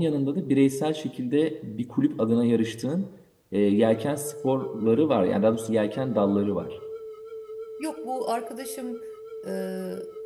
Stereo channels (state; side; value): identical; both; correlation 1.00